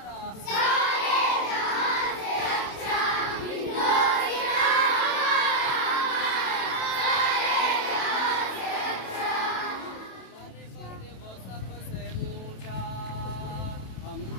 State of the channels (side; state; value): right; late; 27 ms